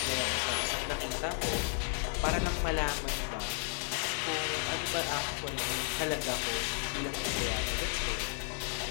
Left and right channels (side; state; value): right; silent; 55 dB below the other